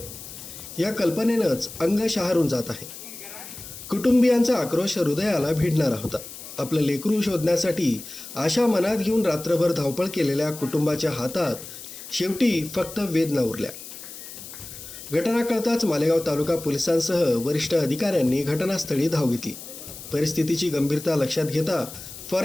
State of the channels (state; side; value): noise; left; hiss, 13 dB below the sound